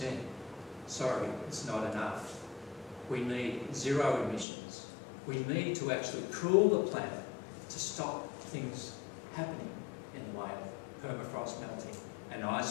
Sorry, it's not enough. We need zero emissions. We need to actually cool the planet to stop things happening in the way of permafrost melting and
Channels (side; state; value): right; drops out; at 4.5 s